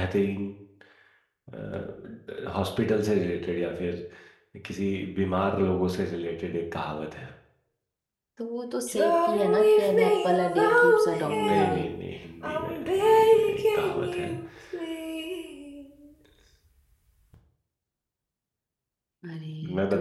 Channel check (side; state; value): both; identical; correlation 1.00